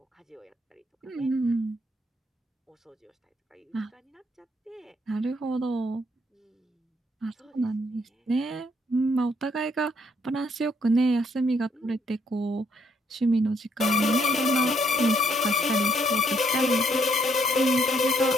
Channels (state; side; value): normal; both; correlation 0.70